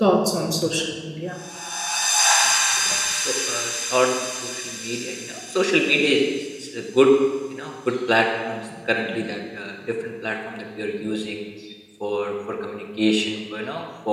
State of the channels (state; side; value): identical; both; correlation 1.00